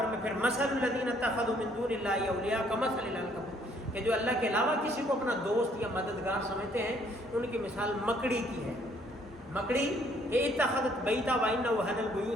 میں پھر مثل الذین اتخذوا من دون اللہ اولیاء کمثل العنکبوت، کہ جو اللہ کے علاوہ کسی کو اپنا دوست یا مددگار سمجھتے ہیں، ان کی مثال مکڑی کی ہے۔ مکڑی کہ اتخذت بیتا وان وهن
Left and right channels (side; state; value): both; normal; correlation 0.64